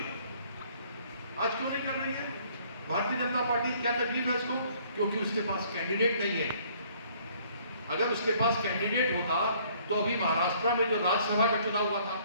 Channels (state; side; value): inverted; both; correlation -0.60